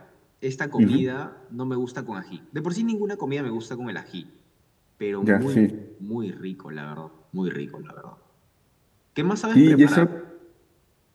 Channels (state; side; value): identical; both; correlation 1.00